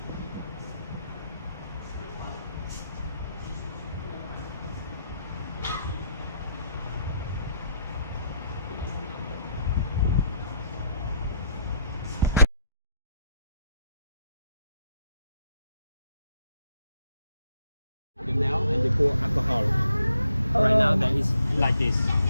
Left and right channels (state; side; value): inverted; both; correlation -0.73